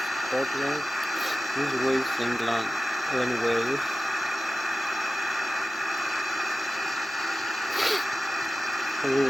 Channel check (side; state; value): both; normal; correlation 0.96